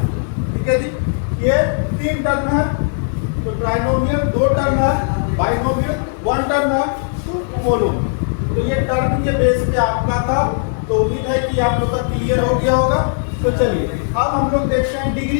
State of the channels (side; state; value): right; silent; digital silence